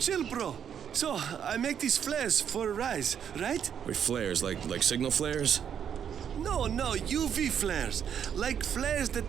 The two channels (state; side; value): quieter; left; 8.5 dB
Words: bro. So, I make these flares for a rise, right? Wait, flares? Like signal flares? No, UV flares. Like flares that